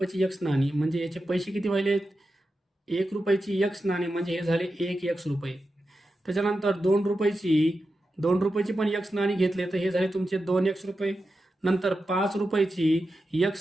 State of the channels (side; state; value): both; normal; correlation 0.90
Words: एक्स नाणी म्हणजे याचे पैसे किती व्हायले? 1 रुपयाची एक्स नाणी म्हणजे हे झाले 1 एक्स रुपये. त्याच्यानंतर 2 रुपयाची पण एक्स नाणी घेतले तर हे झाले तुमचे 2 एक्स रुपये. नंतर 5 रुपयाची